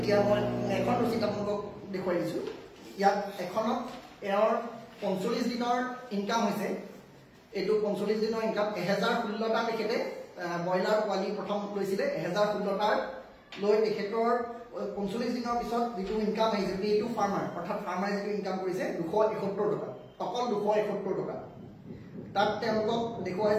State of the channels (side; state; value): both; identical; correlation 1.00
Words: মই এখন ৰচিদ আপোনালোকক দেখুৱাই দিছোঁ ইয়াত এখনত এওঁৰ 45 দিনৰ ইনকাম হৈছে এইটো 45 দিনৰ ইনকাম 1016টা তেখেতে ব্ৰইলাৰ পোৱালি প্ৰথম লৈছিলে 1016টাৰ লৈ তেখেতৰ 45 দিনৰ পিছত যিটো ইনকাম আহিছে এইটো ফাৰ্মাৰ অৰ্থাৎ ফাৰ্মাৰে যিটো ইনকাম কৰিছে 271 টকা অকল 271 টকা তাত তেওঁলোকক